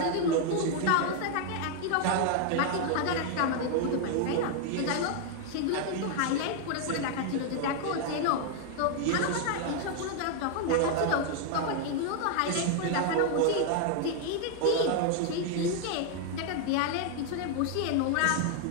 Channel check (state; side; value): different; both; correlation 0.00